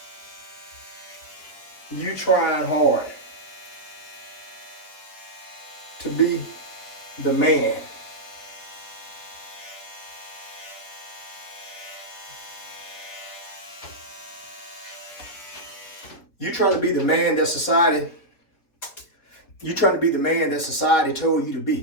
you trying hard to be the man. You trying to be the man that society told you to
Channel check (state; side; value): late; right; 4.4 ms